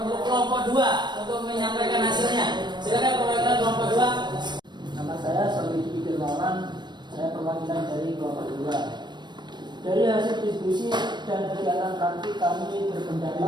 untuk kelompok dua untuk menyampaikan hasilnya. Silakan perwakilan kelompok dua. Nama saya Solidi Firmawan, saya perwakilan dari kelompok dua. Dari hasil diskusi dan kegiatan praktik kami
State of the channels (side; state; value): left; late; 0.22 ms